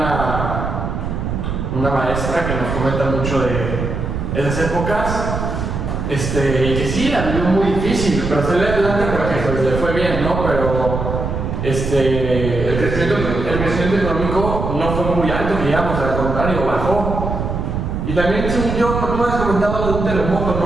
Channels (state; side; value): noise; right; rumble, 3 dB below the sound